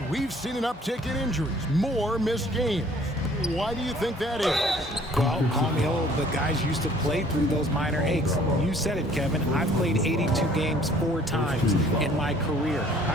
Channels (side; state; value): both; normal; correlation 0.56